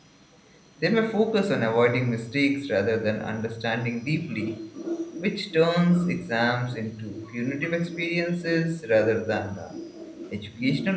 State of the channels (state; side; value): identical; both; correlation 1.00